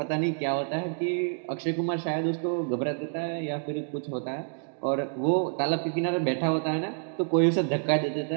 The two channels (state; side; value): silent; left; digital silence